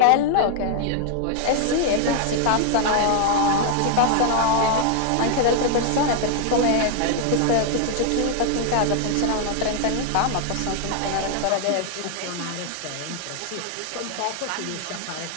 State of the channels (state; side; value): different; both; correlation 0.00